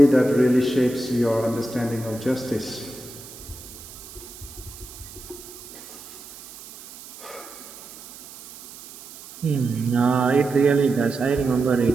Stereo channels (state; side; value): noise; right; hiss, 17 dB below the sound